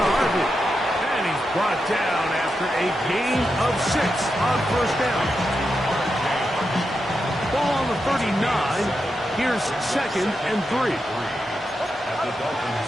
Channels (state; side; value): normal; both; correlation 0.87